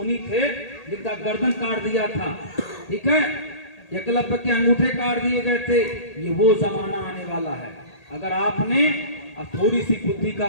थे जिनका गर्दन काट दिया था, ठीक है, एकलव्य के अंगूठे काट दिए गए थे, ये वो जमाना आने वाला है। अगर आपने थोड़ी सी बुद्धि का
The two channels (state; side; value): late; right; 1.8 ms